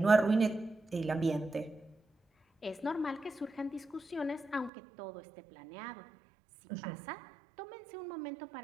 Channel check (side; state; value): left; drops out; at 4.7 s